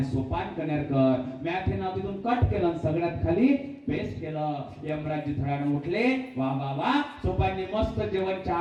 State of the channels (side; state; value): both; identical; correlation 1.00